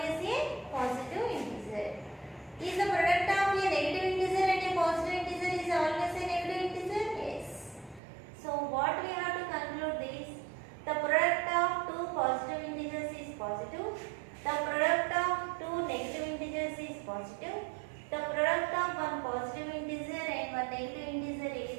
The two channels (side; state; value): left; drops out; at 8.0 s